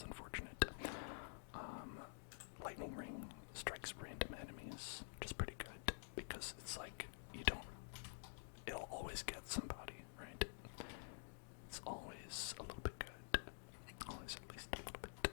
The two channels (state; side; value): silent; right; digital silence